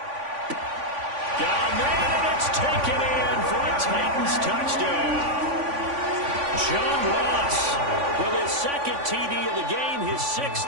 Got a man, and it's taken in for a Titans touchdown. John Ross with his 2nd TD of the game, his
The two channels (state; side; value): late; left; 3.5 ms